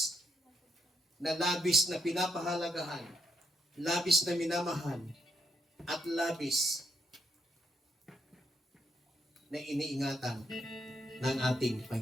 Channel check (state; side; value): normal; both; correlation 0.76